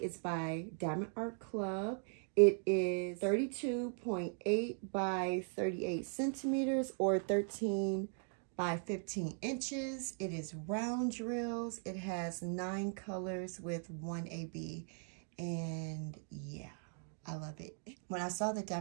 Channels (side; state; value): left; silent; 52 dB below the other